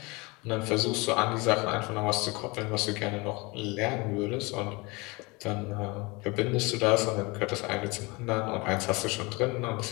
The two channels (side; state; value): right; quieter; 25.9 dB